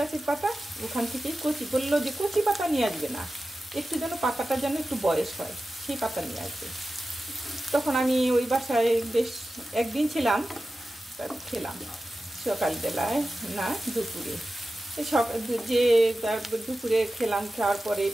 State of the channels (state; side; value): normal; both; correlation 0.94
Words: পাতা, ওখান থেকেই কচি, বললো যে কচি পাতা নিয়ে আসবে না, একটু যেন পাতাটা যেন একটু বয়স হয় সেই পাতা নিয়ে আসবে। তখন আমি ওই বাসায় বেশ একদিন ছিলাম, খেলাম সকালবেলায় না দুপুরে, যে দুপুরে খেলাম। খাওয়ার